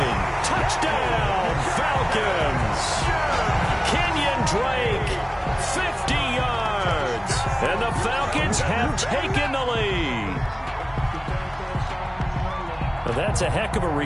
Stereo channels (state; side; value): identical; both; correlation 1.00